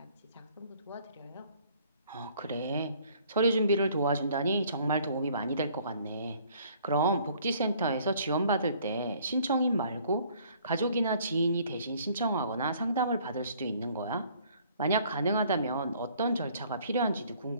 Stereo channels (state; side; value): inverted; both; correlation -0.59